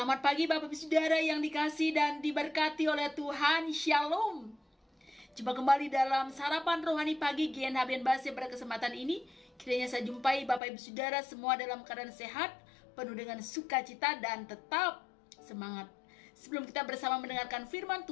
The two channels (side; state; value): right; drops out; at 10.6 s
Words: pagi Bapak Ibu Saudara yang dikasihi dan diberkati oleh Tuhan. Shalom. Jumpa kembali dalam sarapan rohani pagi GNHBN Base. Pada kesempatan ini kiranya saya jumpai Bapak Ibu Saudara semua dalam keadaan sehat, penuh dengan sukacita dan tetap semangat. Sebelum kita bersama mendengarkan firman